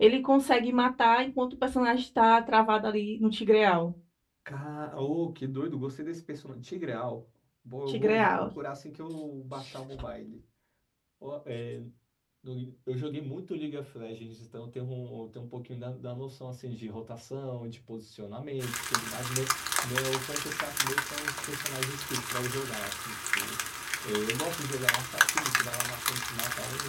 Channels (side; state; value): both; identical; correlation 1.00